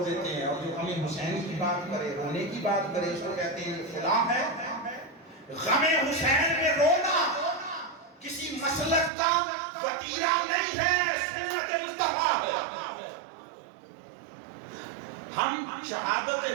دیتے ہیں، اور جو غم حسین کی بات کرے، رونے کی بات کرے، اس کو کہتے ہیں فلاں ہے۔ غم حسین میں رونا کسی مسلک کا وتیرہ نہیں ہے، سنت مصطفیٰ ہے۔ ہم شہادت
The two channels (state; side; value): drops out; left; at 9.1 s